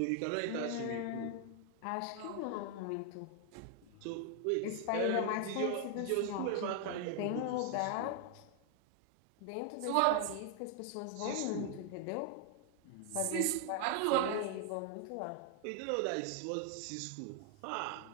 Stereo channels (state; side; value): different; both; correlation 0.00